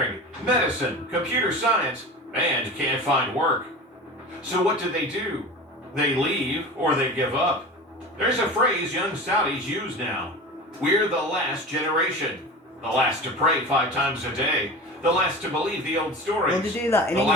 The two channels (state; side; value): normal; both; correlation 0.32